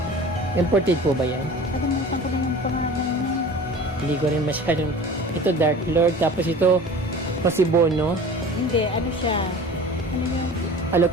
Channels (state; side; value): normal; both; correlation 0.40